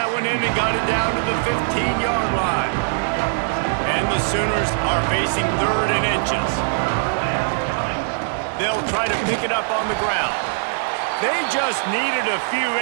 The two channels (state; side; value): silent; left; digital silence